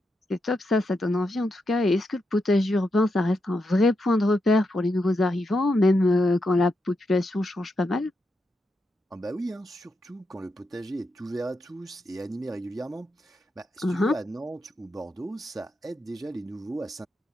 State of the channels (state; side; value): normal; both; correlation 0.84